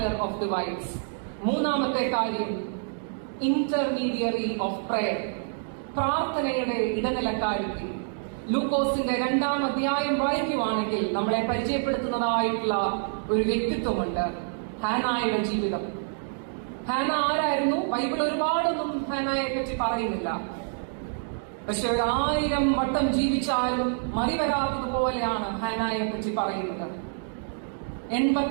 of divides. മൂന്നാമത്തെ കാര്യം, ഇന്റർമീഡിയറി ഓഫ് പ്രയർ, പ്രാർത്ഥനയുടെ ഇടനിലക്കാരിക്ക്. ലൂക്കോസിന്റെ 2-ാം അധ്യായം വായിക്കുവാണെങ്കിൽ നമ്മളെ പരിചയപ്പെടുത്തുന്നതായിട്ടുള്ള ഒരു വ്യക്തിത്വമുണ്ട്, ഹാനായുടെ ജീവിതം. ഹാന ആരായിരുന്നു? ബൈബിൾ ഒരുപാടൊന്നും ഹാനയെ പറ്റി പറയുന്നില്ല. പക്ഷെ 1000 വട്ടം ജീവിച്ചാലും മറിവരാത്തതുപോലെയാണ് ഹാനയെ പറ്റി പറയുന്നത്.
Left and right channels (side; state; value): left; silent; digital silence